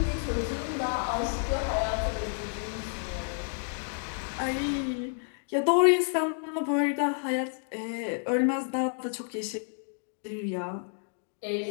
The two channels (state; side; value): silent; right; 58 dB below the other